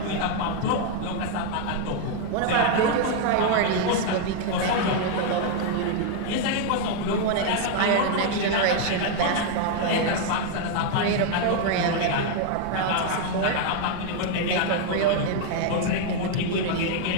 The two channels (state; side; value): different; both; correlation 0.00